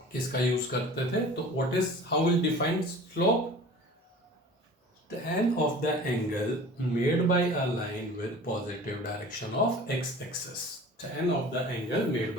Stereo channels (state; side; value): normal; both; correlation 0.42